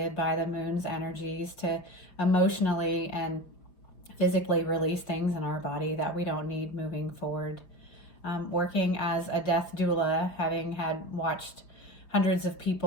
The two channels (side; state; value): right; late; 5.8 ms